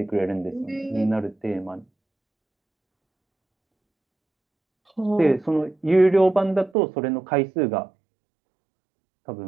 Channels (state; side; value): drops out; left; at 6.7 s